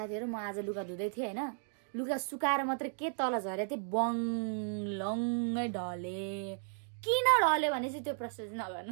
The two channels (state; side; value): silent; left; digital silence